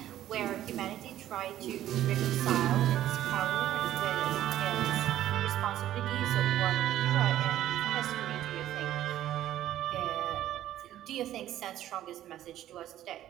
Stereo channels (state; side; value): quieter; left; 12.7 dB